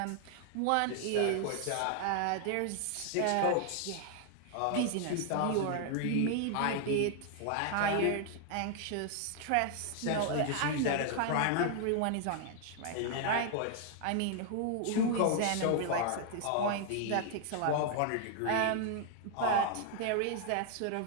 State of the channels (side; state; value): both; different; correlation 0.00